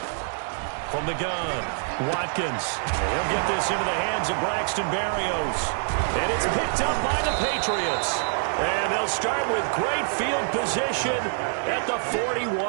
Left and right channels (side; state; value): left; silent; 61 dB below the other